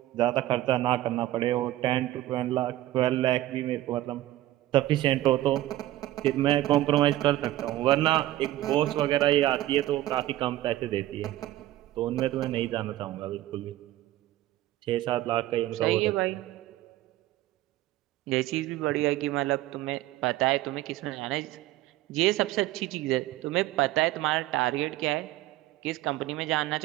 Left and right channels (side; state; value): left; quieter; 15.3 dB